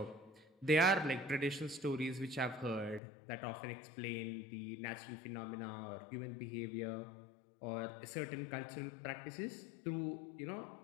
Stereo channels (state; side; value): drops out; right; at 3.0 s